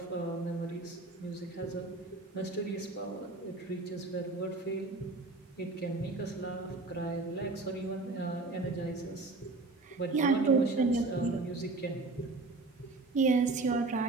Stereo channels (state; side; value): quieter; left; 3.3 dB